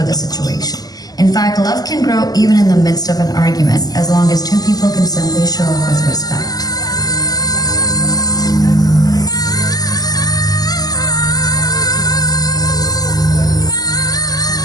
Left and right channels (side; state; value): right; late; 0.18 ms